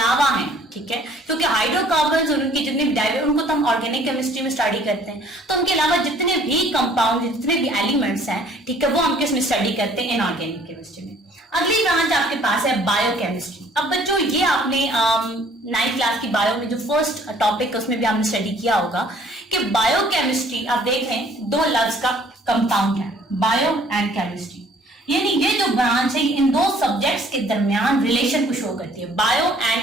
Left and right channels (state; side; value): normal; both; correlation 0.57